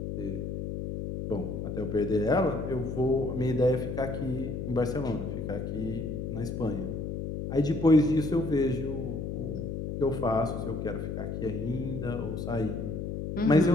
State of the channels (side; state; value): left; noise; hum, 4 dB below the sound